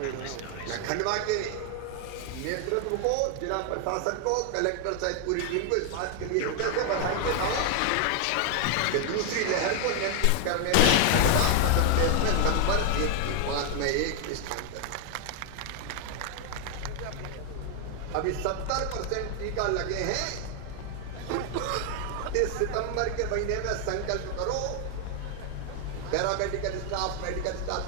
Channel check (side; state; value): both; different; correlation 0.00